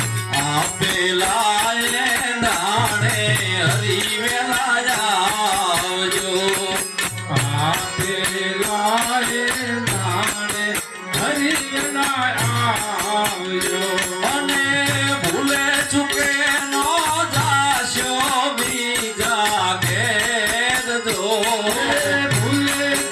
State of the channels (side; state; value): both; identical; correlation 1.00